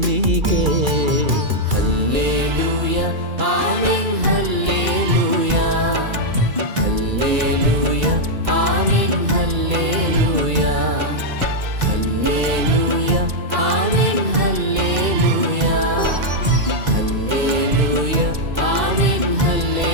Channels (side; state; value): left; late; 2.3 ms